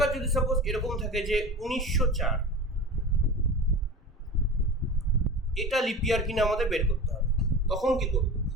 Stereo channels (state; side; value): normal; both; correlation 0.32